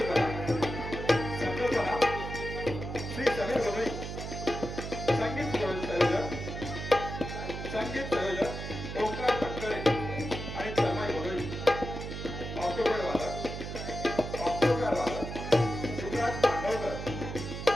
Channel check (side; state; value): right; noise; hum, 7 dB below the sound